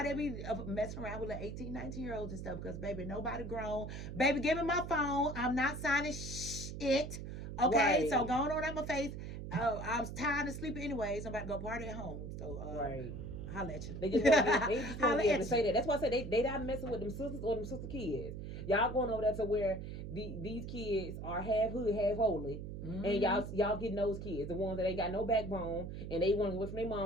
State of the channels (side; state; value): right; noise; hum, 8 dB below the sound